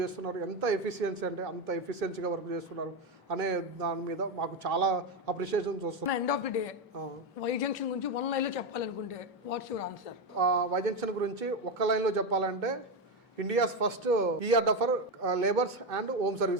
చేస్తున్నారు. ఎంత ఎఫిషియన్సీ అంటే అంత ఎఫిషియన్సీగా వర్క్ చేస్తున్నారు అనే దాని మీద మాకు చాలా అప్రిషియేషన్స్ వస్తున్నాయి. End of the day Y Junction గురించి వన్ లైన్లో చెప్పాలనుకుంటే what's your answer? Y Junction గురించి ఒక్క లైన్లో చెప్పాలంటే India's first ER for labours and home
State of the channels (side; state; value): both; normal; correlation 0.10